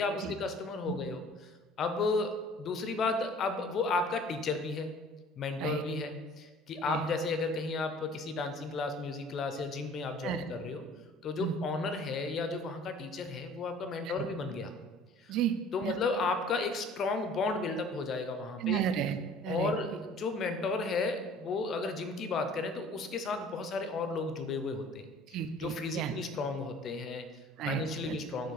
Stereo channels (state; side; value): normal; both; correlation 0.50